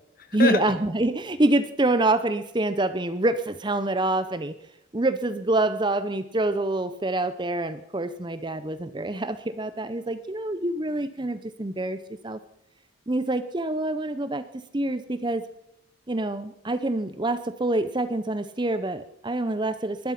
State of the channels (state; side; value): normal; both; correlation 0.55